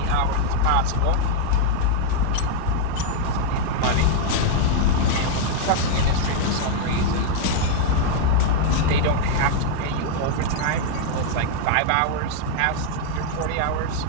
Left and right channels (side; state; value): both; different; correlation 0.00